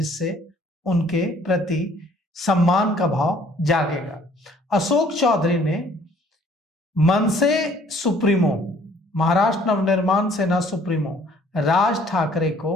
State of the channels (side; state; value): both; normal; correlation 0.58